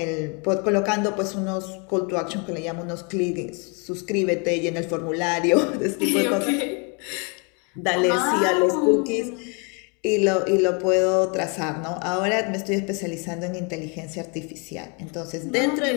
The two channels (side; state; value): right; quieter; 34.0 dB